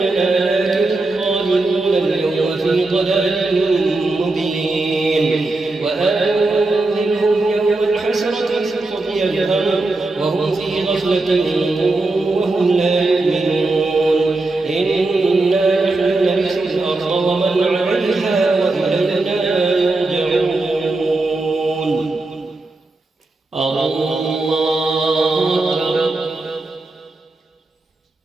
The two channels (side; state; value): left; quieter; 3.1 dB